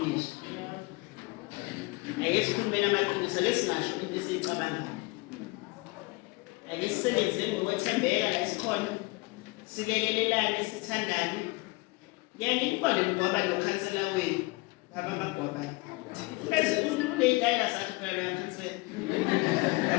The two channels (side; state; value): right; quieter; 25.2 dB